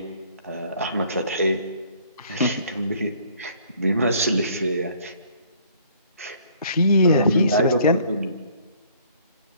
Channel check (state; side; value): inverted; both; correlation -0.59